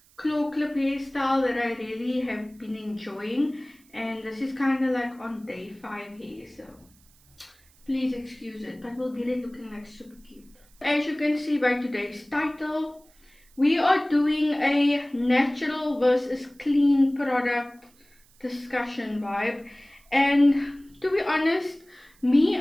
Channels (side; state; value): right; noise; hiss, 30 dB below the sound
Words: claw clip hairstyle that I really have been enjoying, and this is kind of like on day 5 hair, so please excuse it, but we'll get it looking like super cute. As you can see by today's title, we are doing a natural versus clean product discussion vibe. And to be honest, me